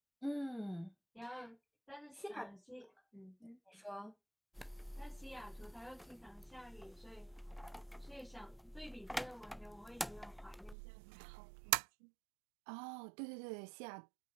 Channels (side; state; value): left; drops out; at 10.8 s